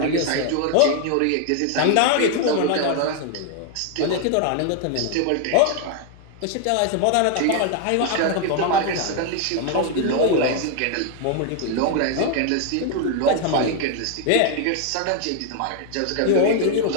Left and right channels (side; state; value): both; different; correlation 0.00